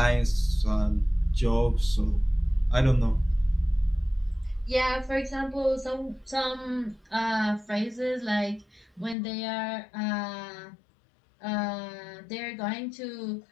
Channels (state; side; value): drops out; right; at 9.2 s